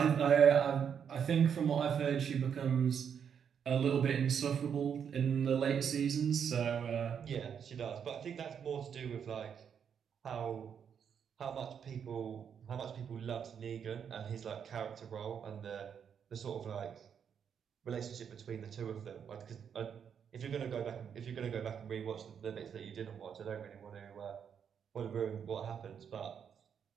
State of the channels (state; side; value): quieter; left; 7.7 dB